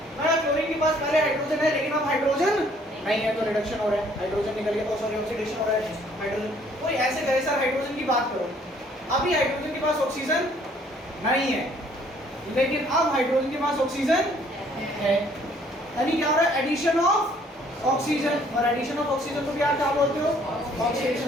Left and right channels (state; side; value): normal; both; correlation 0.61